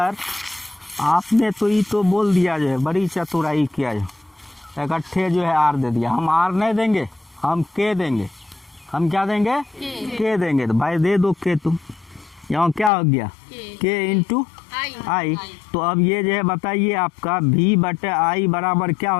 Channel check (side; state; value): right; drops out; at 12.9 s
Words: आपने तो ये तो बोल दिया जो है, बड़ी चतुराई किया जो इकट्ठे जो है आर दे दिया। हम आर नहीं देंगे, हम के देंगे। हम क्या देंगे? के देंगे। तो भाई दे दो के तुम। यहाँ क्या हो गया? के इंटू आई। तो अब ये जो है बताइए आपका भी बटे आई बराबर क्या